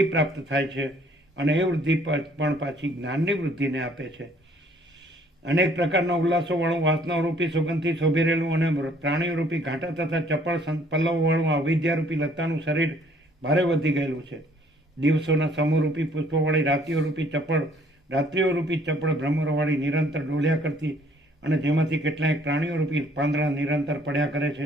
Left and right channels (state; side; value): normal; both; correlation 0.60